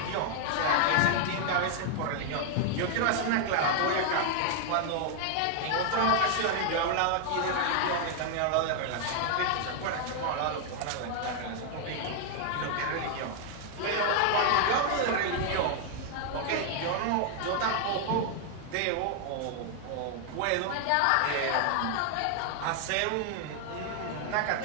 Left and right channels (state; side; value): different; both; correlation 0.00